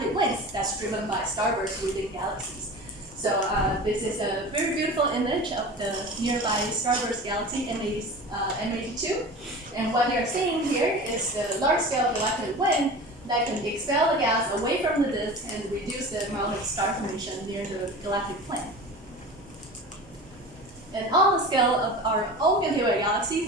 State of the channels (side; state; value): both; normal; correlation 0.34